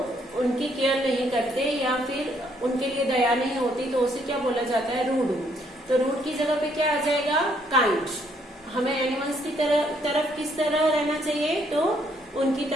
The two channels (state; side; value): normal; both; correlation 0.69